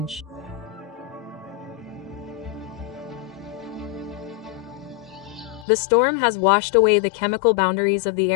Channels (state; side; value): drops out; right; at 5.7 s